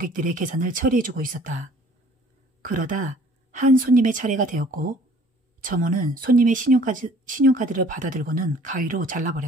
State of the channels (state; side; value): normal; both; correlation 0.53